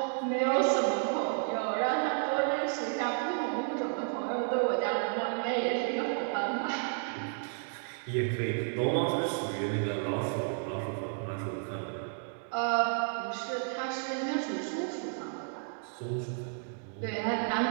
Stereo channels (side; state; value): left; silent; 56 dB below the other